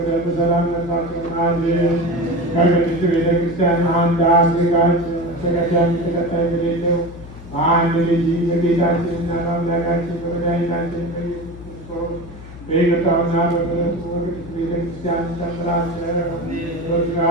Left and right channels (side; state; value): left; noise; hum, 16 dB below the sound